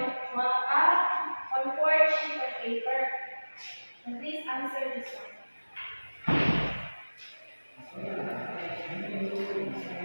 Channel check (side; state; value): both; inverted; correlation -1.00